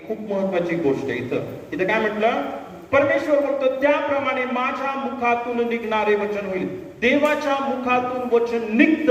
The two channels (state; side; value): identical; both; correlation 1.00